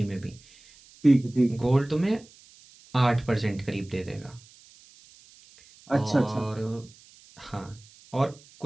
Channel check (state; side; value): noise; right; hiss, 25 dB below the sound